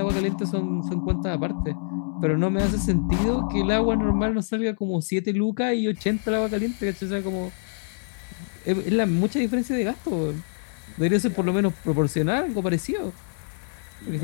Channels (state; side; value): silent; right; 61 dB below the other